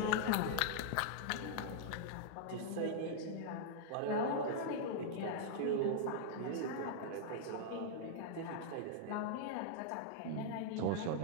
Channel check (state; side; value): different; both; correlation -0.01